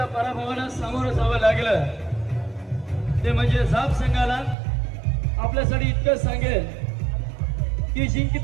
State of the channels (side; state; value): left; drops out; at 4.5 s